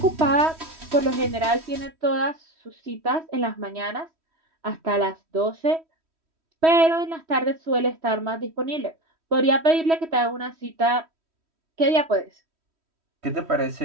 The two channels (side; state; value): left; late; 3.1 ms